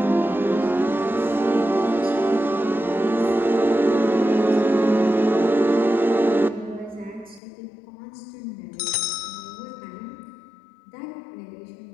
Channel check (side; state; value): right; drops out; at 7.4 s